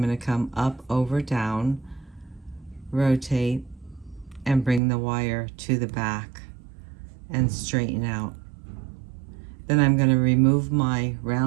going to come up, over, down, rotate, and bring the wire to the back and straighten out. Then I'm going to remove my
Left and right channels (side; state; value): left; drops out; at 4.8 s